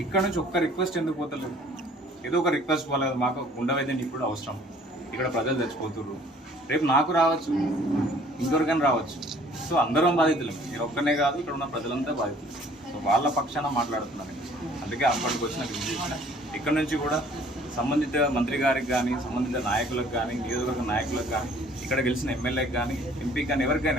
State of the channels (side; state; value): both; normal; correlation 0.56